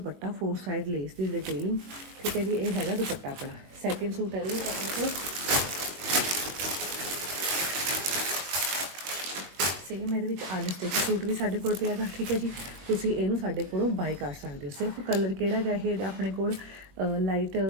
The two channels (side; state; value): left; late; 22 ms